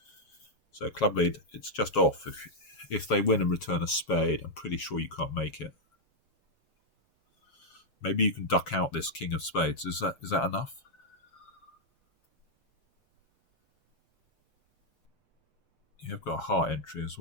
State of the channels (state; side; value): late; right; 7.4 ms